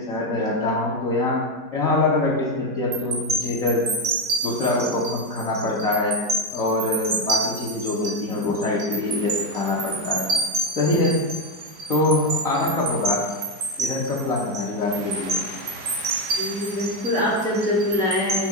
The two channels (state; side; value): late; left; 4.9 ms